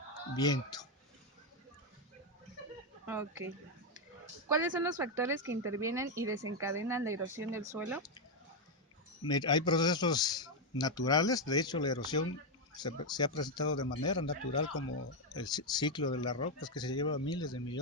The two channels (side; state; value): both; normal; correlation 0.04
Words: viento. Ok. ¿Cuáles son los factores que intervienen y desencadenan la erosión del suelo? Hay procesos naturales, de hecho la erosión se ha presentado de manera natural como el ciclo de las rocas que se lleva miles de